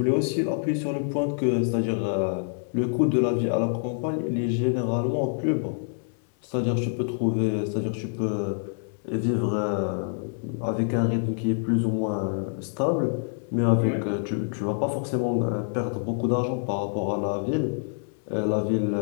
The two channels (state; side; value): silent; right; 61 dB below the other